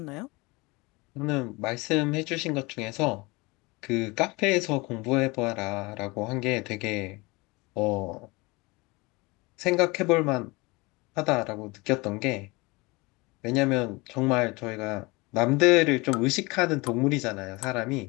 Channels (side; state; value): right; quieter; 24.6 dB